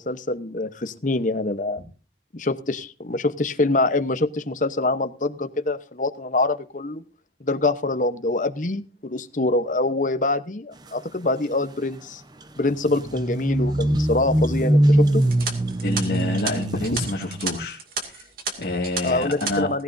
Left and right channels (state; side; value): normal; both; correlation 0.44